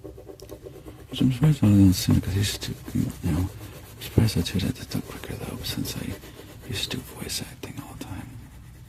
Which I'm surprised I didn't sooner, because I used to, I'm surprised that it took quicker though, since I used to do voice acting all the time.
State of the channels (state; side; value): identical; both; correlation 1.00